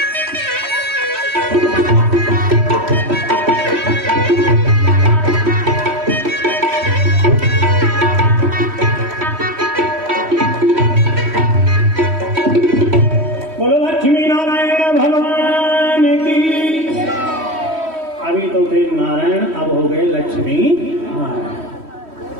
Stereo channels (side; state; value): left; late; 3.1 ms